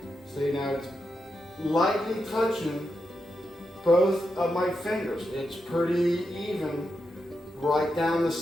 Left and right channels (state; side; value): normal; both; correlation 0.86